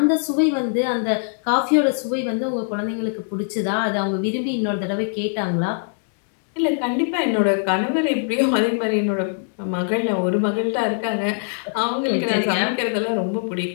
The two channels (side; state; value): right; silent; digital silence